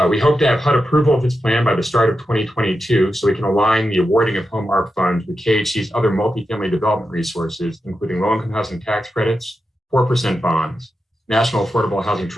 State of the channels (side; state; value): both; normal; correlation 0.89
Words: We hope to have HUD approval of this plan by the start of 2022 so we can align the awarding of home ARP funds with KHC's other multifamily development resources, including low-income housing tax credits, 4% bonds, National Affordable Housing